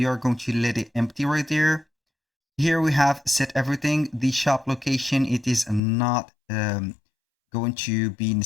are going to let it empty right there. Here we have set everything. The shop location, it is not going to be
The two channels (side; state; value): right; drops out; at 5.8 s